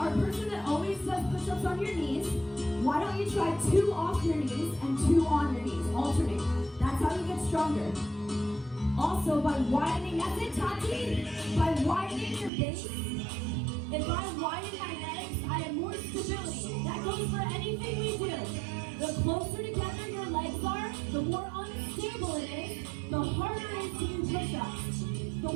a person that always does push-ups on your knees, why don't you try 2 off your knees and 2 on your knees? Alternate. That's how you get stronger. Also, by widening, that's it, Tati. By widening your base, if I widen my legs, I have more stability. That goes for anything we do. The closer together your legs are, the more unstable it is, the harder it is to do push-ups. The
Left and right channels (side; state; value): left; drops out; at 12.5 s